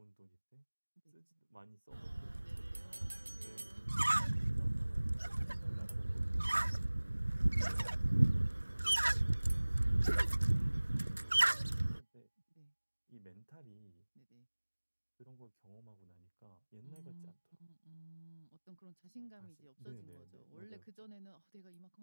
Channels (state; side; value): inverted; both; correlation -1.00